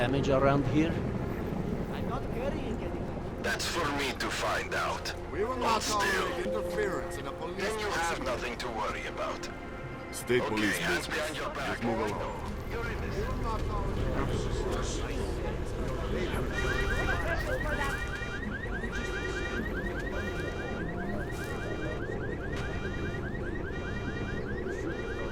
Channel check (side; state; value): both; identical; correlation 1.00